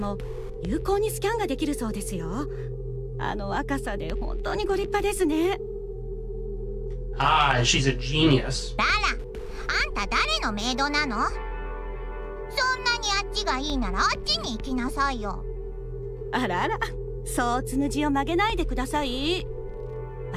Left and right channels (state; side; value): identical; both; correlation 1.00